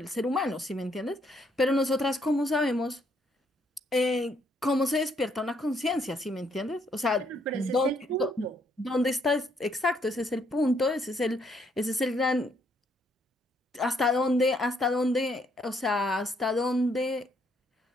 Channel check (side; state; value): both; normal; correlation 0.71